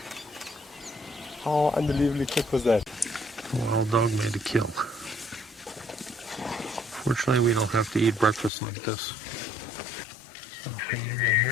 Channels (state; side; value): drops out; right; at 8.5 s